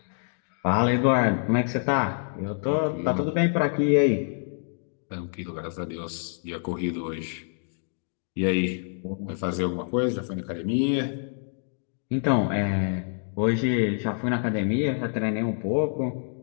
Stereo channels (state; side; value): silent; right; digital silence